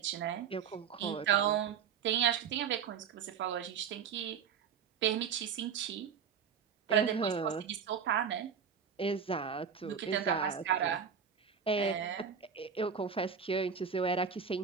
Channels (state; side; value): quieter; left; 7.1 dB